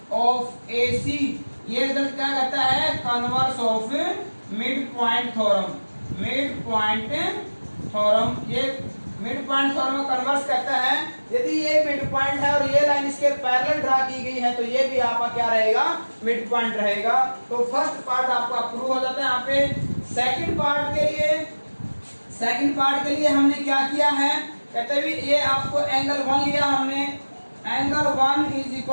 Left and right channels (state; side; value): inverted; both; correlation -1.00